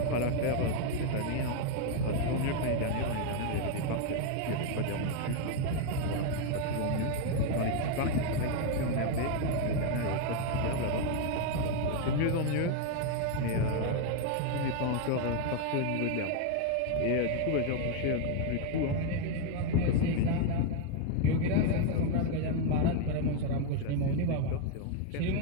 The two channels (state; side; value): different; both; correlation 0.01